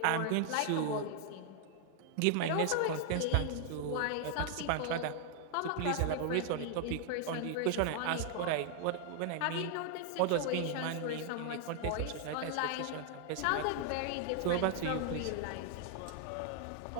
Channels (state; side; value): different; both; correlation 0.00